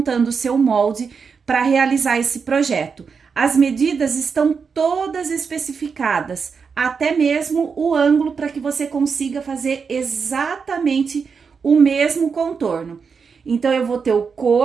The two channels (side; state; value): left; quieter; 5.7 dB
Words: o seu molde para realizar esse projeto. As medidas estão todas especificadas, até mesmo o ângulo para que você consiga fazer exatamente o mesmo contorno. Então, eu vou ter o